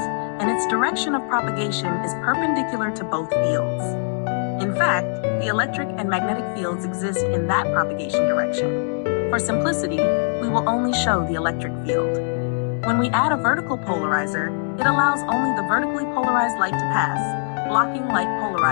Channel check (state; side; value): silent; right; digital silence